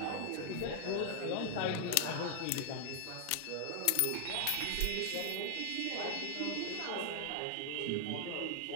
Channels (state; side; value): different; both; correlation 0.00